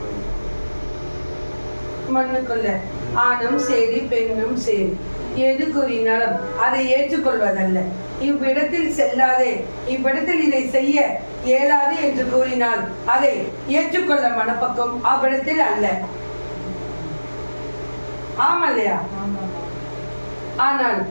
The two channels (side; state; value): both; inverted; correlation -1.00